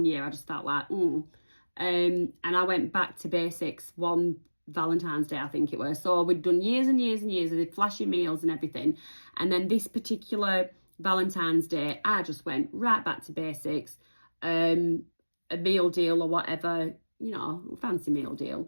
year I just felt like, and I went back to basics one Valentine's Day, I think it was. So we'd done years and years and years of flashy meals and everything. And then this particular Valentine's Day, I just went right back to basics. A meal deal or whatever, fancy meal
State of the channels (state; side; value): inverted; both; correlation -1.00